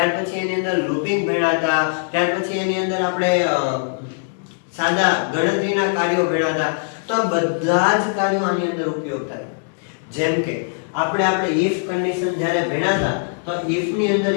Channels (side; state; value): right; silent; 65 dB below the other